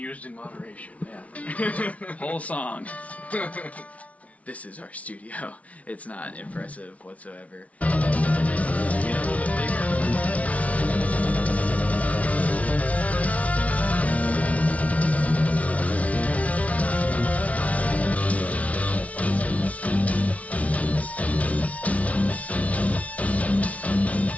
in moderation. Yeah. Whole song. This is our studio. It's not impressive whatsoever.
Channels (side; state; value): right; late; 0.067 ms